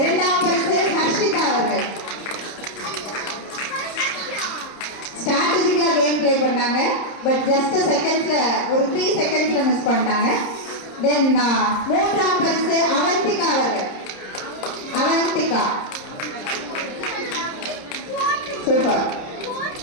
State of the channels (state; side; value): late; right; 30 ms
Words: பரிசு ஹர்ஷிதா அவர்கள். ஸ்ட்ராட்டஜிக்கலா கேம் பிளே பண்ணாங்க, பட் ஜஸ்ட் செகண்ட்ஸ்ல ஒரு 3 செகண்ட்ஸ்ல மிஸ் பண்ணிட்டாங்க. தென் மூன்றாம் பரிசு அவந்திகா அவர்கள். அவந்திகா சூப்பர்.